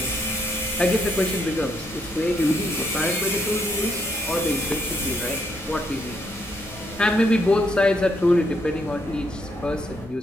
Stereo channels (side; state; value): both; normal; correlation 0.74